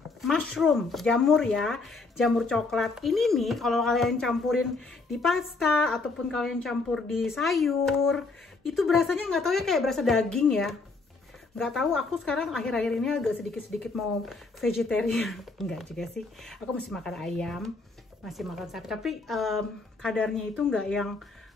mushroom, jamur ya, jamur coklat. Ini nih kalau kalian campurin di pasta ataupun kalian campur di sayur, itu berasanya nggak tahu ya, kayak berasa daging ya. Nggak tahu, aku sekarang akhir-akhir ini agak sedikit-sedikit mau vegetarian. Enggak juga sih, aku masih makan ayam, masih makan sapi, tapi kadarnya itu nggak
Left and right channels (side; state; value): right; quieter; 3.9 dB